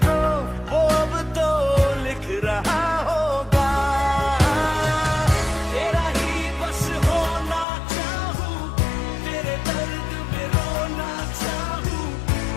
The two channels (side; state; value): right; drops out; at 7.7 s